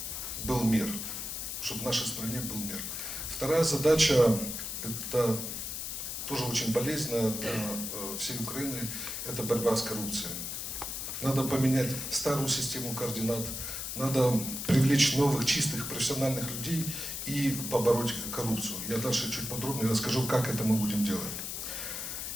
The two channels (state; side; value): noise; left; hiss, 5 dB below the sound